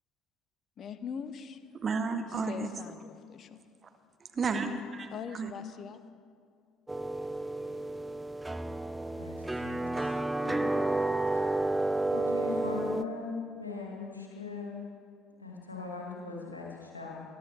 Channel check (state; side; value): normal; both; correlation 0.84